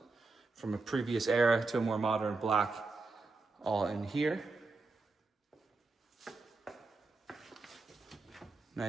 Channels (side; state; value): left; quieter; 3.7 dB